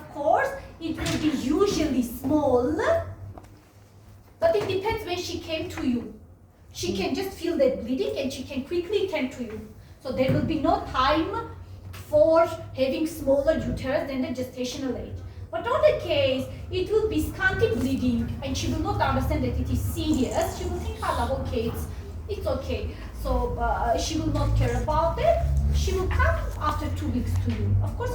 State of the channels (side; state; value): both; identical; correlation 1.00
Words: course, it will be usually small, but it depends when she came to you. She can just feel that bleeding and she can quickly tend to you. So there will be no time for having smaller uterus than the gestational age. But on the case, it will be scanty bleeding and she will not understand that it is serious. She will think, oh, okay, it's okay. So she will not care about it. She will come after 2 weeks to you. Of course,